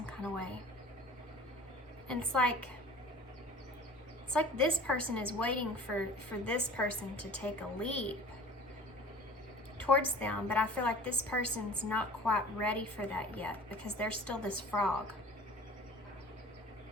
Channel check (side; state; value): both; normal; correlation 0.45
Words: kind of way. And it's like this person is waiting for this person to take a leap towards them, but I feel like this person's not quite ready for that yet because they're still this frog.